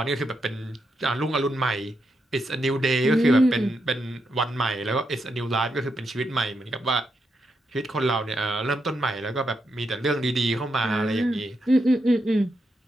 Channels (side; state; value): both; normal; correlation 0.83